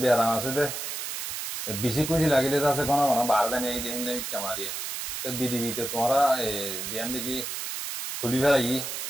beram ase de বেশি খুশি লাগিলে তো আছে কোনো কোনো বারদানি এই দেখিলে মিথ্যা মারিয়া তো বিডিবিতে তোমরা দিয়ান দেখি তুলি ফেলাই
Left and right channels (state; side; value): noise; right; hiss, 5 dB below the sound